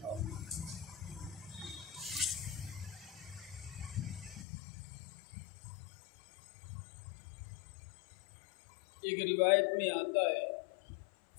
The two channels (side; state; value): right; drops out; at 4.5 s